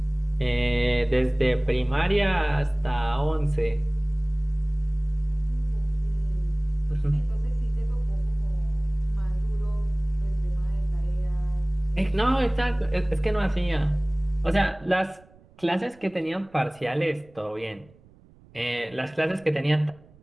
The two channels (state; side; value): noise; right; rumble, 26 dB below the sound